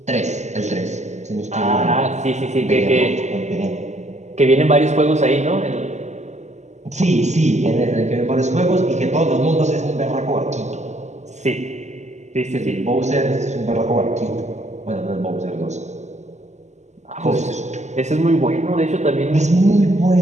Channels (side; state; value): left; late; 0.33 ms